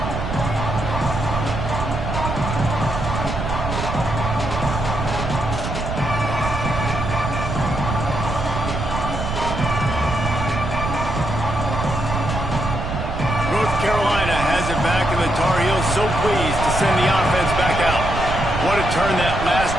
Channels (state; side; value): noise; right; rumble, 4 dB below the sound